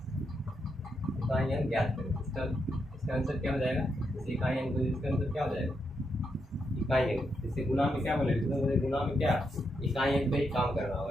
इकाई अंक ज्ञात करें। इसका आंसर क्या हो जाएगा, जैसे इकाई अंक, इसका आंसर क्या हो जाएगा इकाई अंक। जैसे गुना में क्या बोले, गुना में क्या इकाई अंक पे ही काम करना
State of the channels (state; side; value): normal; both; correlation 0.81